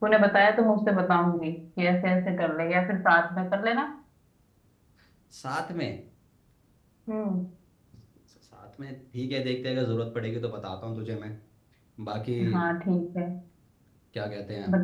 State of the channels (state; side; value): identical; both; correlation 1.00